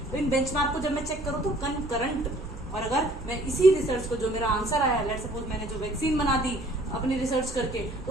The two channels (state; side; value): noise; right; hum, 13 dB below the sound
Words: तो इन बेंचमार्क को जब मैं चेक करूँ तो कंकरंट, और अगर मैं इसी रिसर्च को जो मेरा आंसर आया, लेट्स सपोज मैंने जो वैक्सीन बना दी अपनी रिसर्च करके,